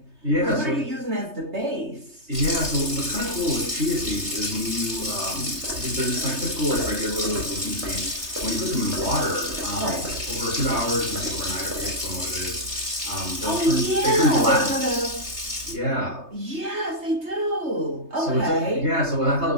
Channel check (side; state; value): left; late; 3.3 ms